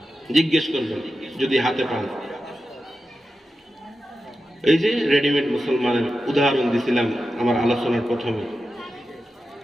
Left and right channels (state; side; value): normal; both; correlation 0.91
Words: জিজ্ঞেস করবেন যদি হাতে পান। এই যে রেডিমেড মুসলমানের উদাহরণ দিছিলাম আমার আলোচনার প্রথমে,